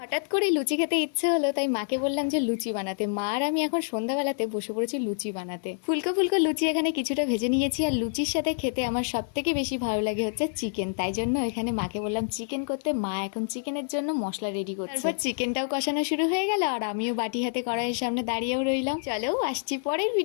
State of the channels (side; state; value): right; silent; 60 dB below the other